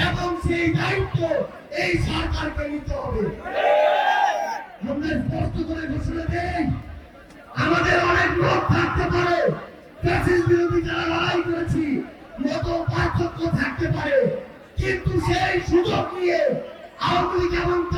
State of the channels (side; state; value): both; identical; correlation 1.00